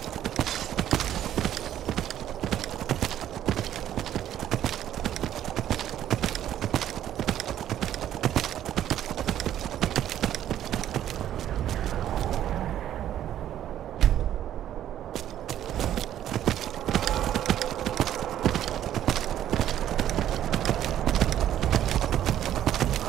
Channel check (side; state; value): left; quieter; 11.4 dB